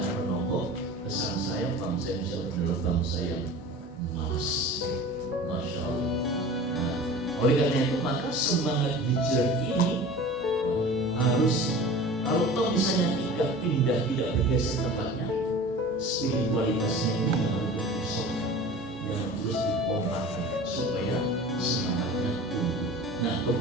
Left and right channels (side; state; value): both; normal; correlation 0.38